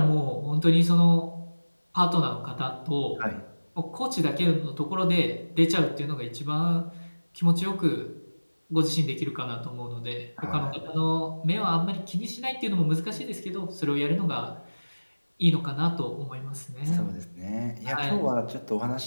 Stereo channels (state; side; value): inverted; both; correlation -1.00